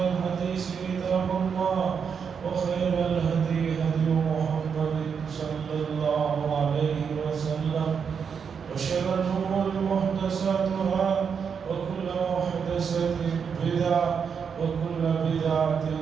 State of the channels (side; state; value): left; quieter; 6.6 dB